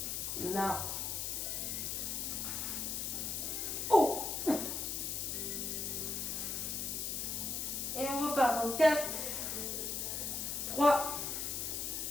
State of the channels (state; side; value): noise; left; hiss, 2 dB below the sound